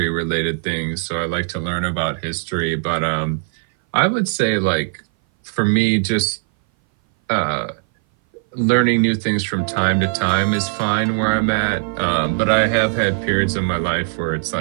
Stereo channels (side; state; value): left; silent; 59 dB below the other